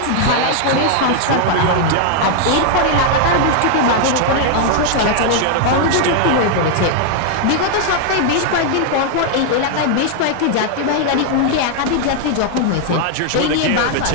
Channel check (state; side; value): different; both; correlation 0.00